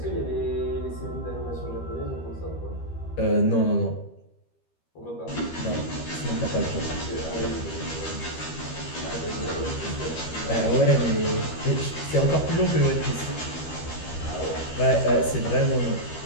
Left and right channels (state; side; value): late; right; 13 ms